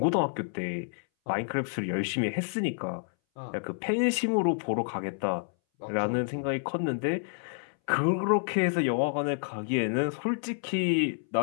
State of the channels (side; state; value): right; silent; 59 dB below the other